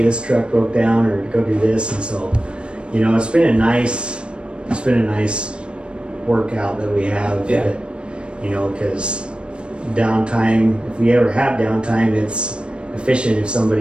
this truck broke down, or go do this. And so, you know, it's been a nice workout that we have. Yeah. That, you know, because downtime, if we ever have downtime, it's efficient if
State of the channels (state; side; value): late; left; 0.056 ms